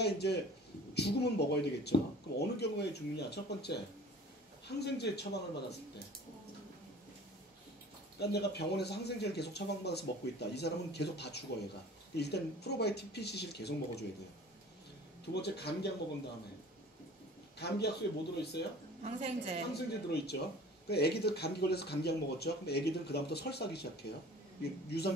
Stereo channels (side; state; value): both; normal; correlation 0.45